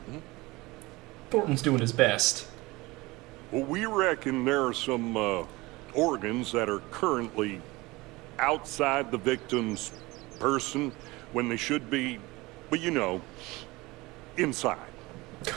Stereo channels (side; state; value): left; quieter; 21.8 dB